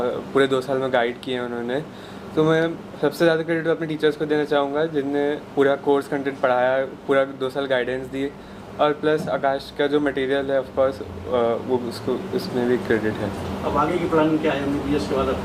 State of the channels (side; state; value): both; identical; correlation 1.00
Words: पूरे 2 साल में गाइड किए हैं उन्होंने. तो मैं सबसे ज़्यादा क्रेडिट अपने टीचर्स को देना चाहूँगा जिनने पूरा कोर्स कंटेंट पढ़ाया, पूरा 2 साल गाइडेंस दी, और प्लस आकाश का जो मटेरियल है ऑफ कोर्स वो उसमें भी क्रेडिट है. अब आगे की प्लानिंग क्या है? MBBS के बाद अब